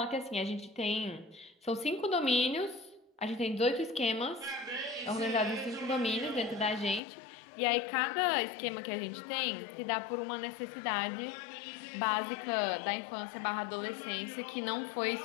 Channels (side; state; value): right; drops out; at 7.0 s